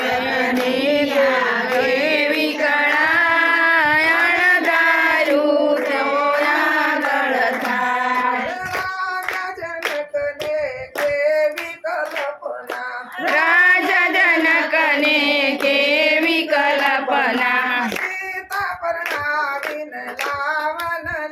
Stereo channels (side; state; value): both; identical; correlation 1.00